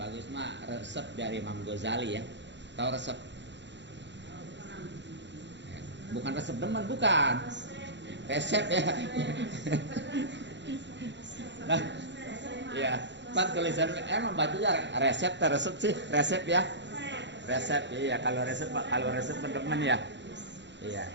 bagus mah resep dari Imam Ghazali ya. Tahu resep? Bukan resep demen, bukan. Resep ya. Nah, ya, kan tulisan emang bacanya resep atau resep sih? Resep ya. Resep ya, kalau resep demen ya. Iya.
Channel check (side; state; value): left; late; 0.52 ms